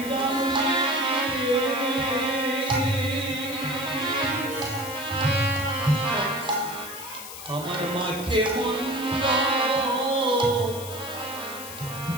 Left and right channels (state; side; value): noise; left; hiss, 11 dB below the sound